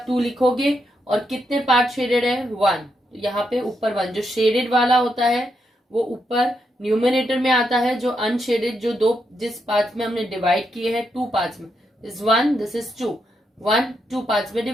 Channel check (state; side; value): normal; both; correlation 0.81